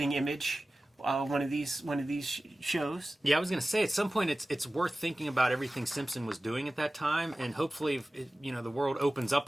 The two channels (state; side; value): normal; both; correlation 0.96